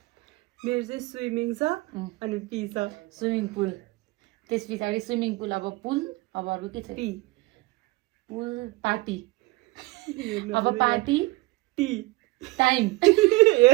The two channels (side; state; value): left; quieter; 21.9 dB